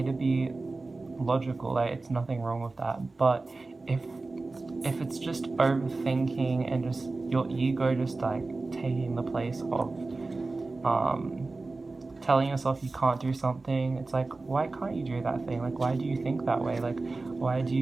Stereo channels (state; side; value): quieter; left; 3.5 dB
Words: to be logical. Like it's nothing wrong with that. But if it's just overthinking and just your ego just like taking the place of telling yourself you can't do something, it's like, why can't you do that thing? Like why do you think that way? Like why do